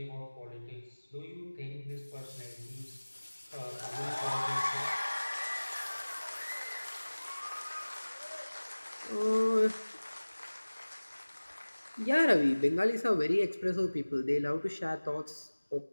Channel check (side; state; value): both; inverted; correlation -1.00